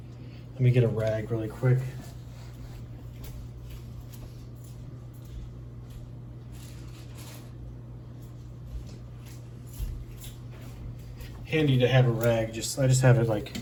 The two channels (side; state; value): both; identical; correlation 1.00